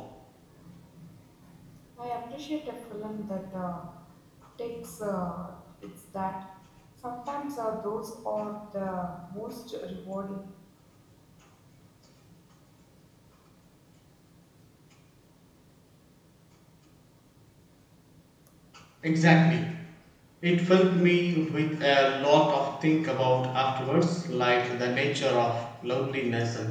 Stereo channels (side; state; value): both; identical; correlation 1.00